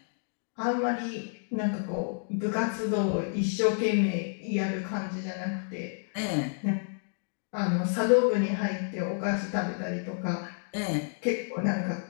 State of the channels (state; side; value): silent; right; digital silence